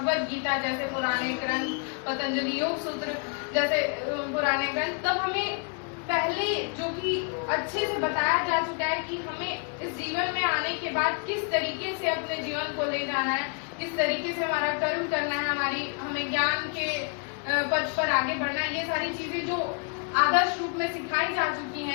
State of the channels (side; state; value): right; quieter; 36.6 dB